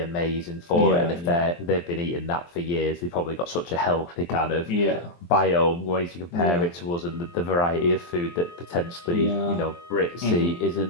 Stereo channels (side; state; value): right; late; 23 ms